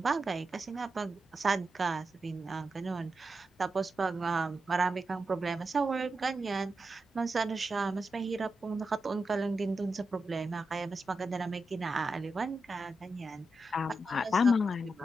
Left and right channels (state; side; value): normal; both; correlation 0.88